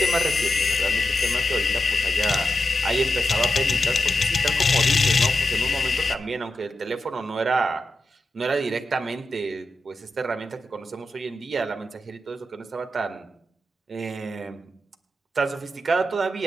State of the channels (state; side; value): normal; both; correlation 0.89